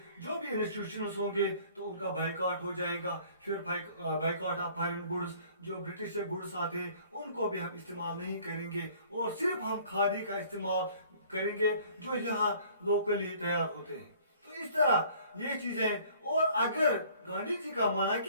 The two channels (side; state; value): both; inverted; correlation -0.54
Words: जो भी इंस्टीट्यूशंस होंगे तो उनका बाइकआउट हो जाएगा। फिर बाइकआउट ऑफ फॉरेन गुड्स, जो ब्रिटिश से गुड्स आते हैं उनको भी हम इस्तेमाल नहीं करेंगे और सिर्फ हम खादी का इस्तेमाल करेंगे जो यहाँ लोकली तैयार होते हैं। तो इस तरह ये चीजें, और अगर गांधी जी का माना कि